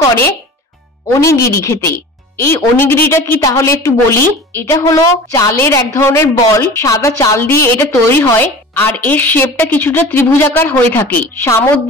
করে ওনিগিরি খেতে। এই ওনিগিরিটা কি তাহলে একটু বলি। এটা হলো চালের এক ধরনের বল, সাদা চাল দিয়ে এটা তৈরি হয়, আর এর শেপটা কিছুটা ত্রিভুজাকার হয়ে থাকে।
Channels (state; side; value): normal; both; correlation 0.38